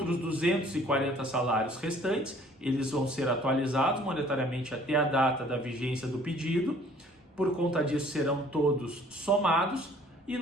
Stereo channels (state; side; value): normal; both; correlation 0.55